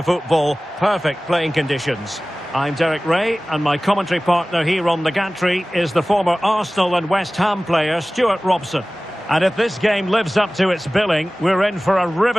football. Perfect playing conditions. I'm Derek Ray and my commentary partner here on the gantry is the former Arsenal and West Ham player Stuart Robson. And if this game lives up to its billing, we're in for a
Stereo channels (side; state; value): both; normal; correlation 0.98